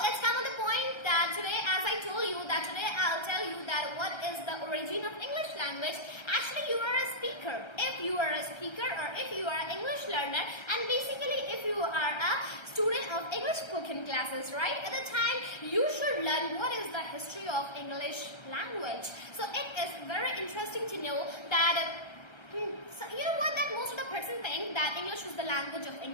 let's come to the point, that today, as I told you, that today I'll tell you that what is the origin of English language. Actually, you are a speaker. If you are a speaker, or if you are an English learner, and basically if you are a student of English spoken classes, right? At the time, you should learn what is the history of English language. So it is very interesting to know that so you know what, that most of the person think that English is the language of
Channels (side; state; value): right; late; 1.3 ms